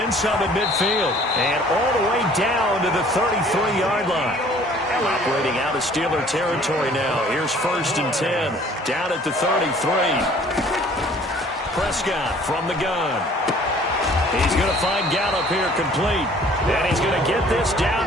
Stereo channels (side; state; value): both; normal; correlation 0.54